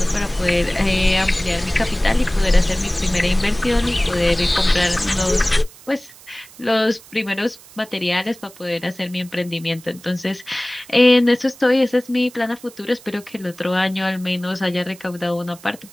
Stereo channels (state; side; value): noise; right; hiss, 22 dB below the sound